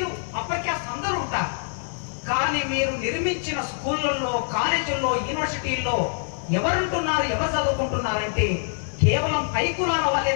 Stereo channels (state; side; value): silent; right; digital silence